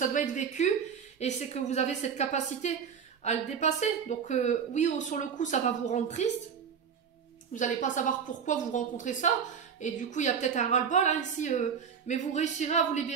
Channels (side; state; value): left; quieter; 7.1 dB